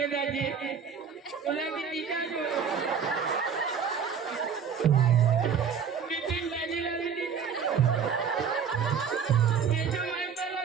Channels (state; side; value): quieter; left; 6.9 dB